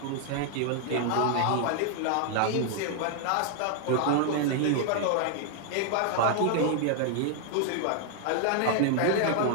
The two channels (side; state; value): both; different; correlation 0.00